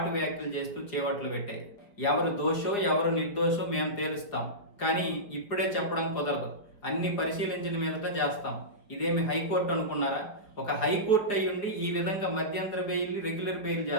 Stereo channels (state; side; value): late; right; 4.7 ms